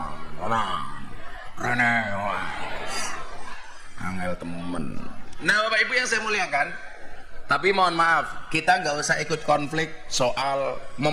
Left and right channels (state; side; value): identical; both; correlation 1.00